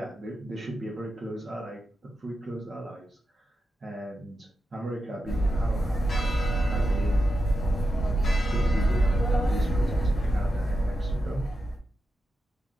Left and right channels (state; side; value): normal; both; correlation 0.89